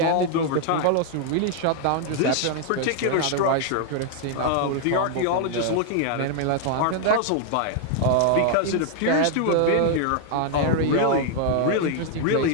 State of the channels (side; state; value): both; different; correlation 0.00